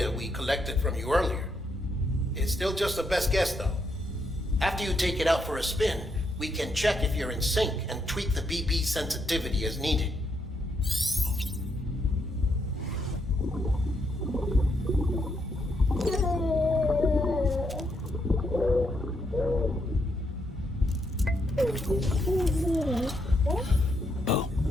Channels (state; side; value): normal; both; correlation 0.78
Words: we collected from you earlier. It's still just a best guess, though. After you take it out for a spin, we can check if you're in sync and tweak the BB sensitivity as needed.